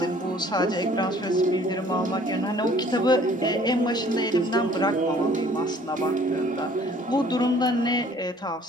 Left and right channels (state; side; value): normal; both; correlation 0.55